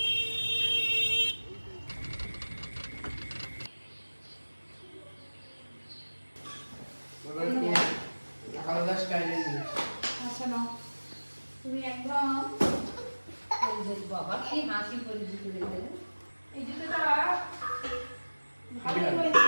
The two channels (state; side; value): inverted; both; correlation -1.00